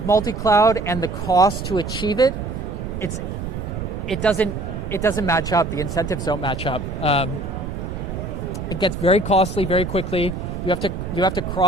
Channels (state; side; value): noise; right; rumble, 6 dB below the sound